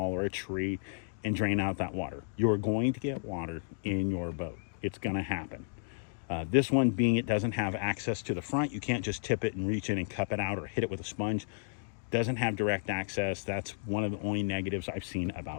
or a tree, and drain out that water. You're going to get water in your boat. It's going to happen. This one being it doesn't have access to the front. You can't just tip it and reach in and cup it out or hit it with a sponge. Doesn't have direct access. That's one of the only negatives I've seen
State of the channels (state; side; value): silent; right; digital silence